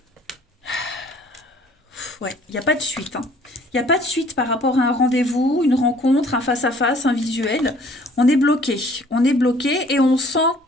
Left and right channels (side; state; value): both; normal; correlation 0.56